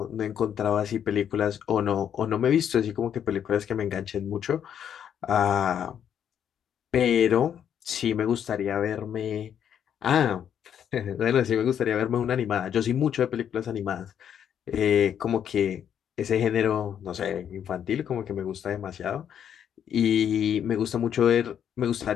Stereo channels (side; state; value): right; quieter; 9.0 dB